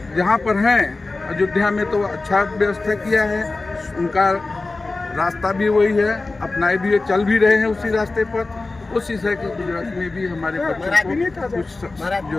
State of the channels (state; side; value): quieter; right; 3.4 dB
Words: जहाँ पर हैं अयोध्या में तो अच्छा व्यवस्था किया है, उनका रास्ता भी वही है, अपनाए भी चल भी रहे हैं उसी रास्ते पर। कोशिश है कि गुजरात में भी हमारे बच्चों को कुछ